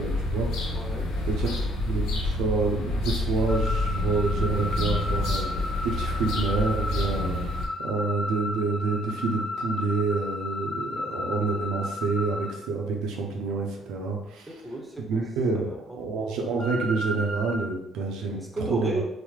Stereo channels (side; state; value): both; normal; correlation 0.63